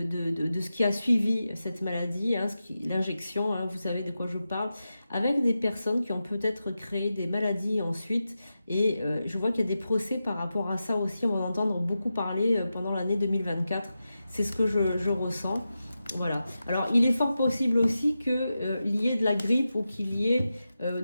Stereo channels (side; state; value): both; inverted; correlation -0.91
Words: ce qui a suivi cette maladie, hein, l'injection, hein, vous savez de quoi je parle, avec des personnes qui ont peut-être créé des maladies ensuite. Et je vois qu'il y a des procès par rapport à ça aussi. On va en entendre beaucoup parler pendant l'année 2024. C'est ce que je ressens. Voilà. Alors, il est fort possible aussi qu'il y ait de la grippe ou qu'il y ait,